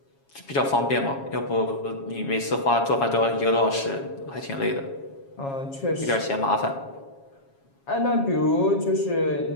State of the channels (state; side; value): late; right; 7.3 ms